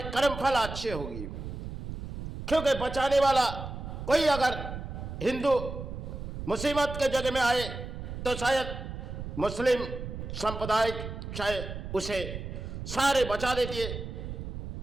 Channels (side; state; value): right; noise; rumble, 8 dB below the sound